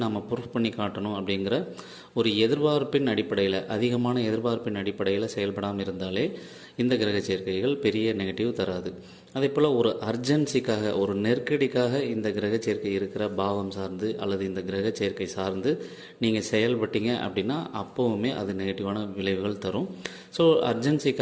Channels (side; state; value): both; identical; correlation 1.00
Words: நம்ம ப்ரூஃப் பண்ணி காட்டணும் அப்படிங்கிற ஒரு எதிர்பார்ப்பின் அடிப்படையில், அதிகமான எதிர்பார்ப்பின் அடிப்படையில் செயல்படாமல் இருந்தாலே இந்த கிரக சேர்க்கைகள் பெரிய நெகட்டிவ் தராது. அதே போல் ஒரு அர்ஜென்சிக்காக, ஒரு நெருக்கடிக்காக இந்த கிரக சேர்க்கை இருக்கிற பாவம் சார்ந்து அல்லது இந்த கிரக சேர்க்கை சார்ந்து நீங்கள் செயல்பட்டீங்க அப்படின்னா அப்போவுமே அது நெகட்டிவான விளைவுகள் தரும். ஸோ